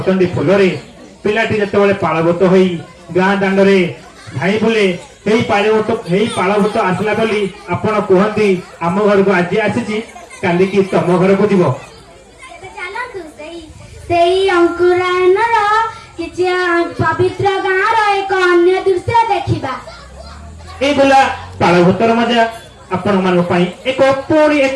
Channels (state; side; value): identical; both; correlation 1.00